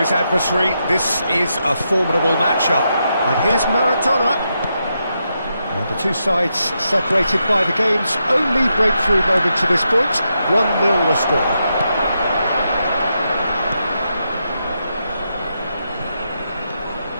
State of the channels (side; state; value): both; inverted; correlation -0.84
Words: adversary. This is a formidable matchup. And here's Maradona. And the two sides separated by the game's only breakthrough moment to this point. 1-0 the score.